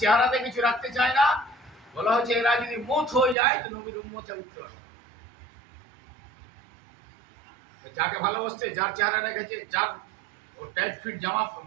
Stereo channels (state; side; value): drops out; left; at 3.4 s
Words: চেহারাতে কিছু রাখতে চায় না বলা হচ্ছে এরা যদি মউত হয়ে যায় তো নবীর উম্মতে উঠতে পারবে যাকে ভালোবাসছে যার চেহারা রেখেছে যার ও টাইট ফিট জামা